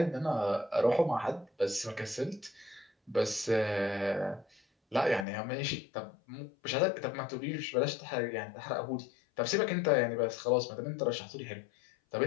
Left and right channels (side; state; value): right; drops out; at 5.2 s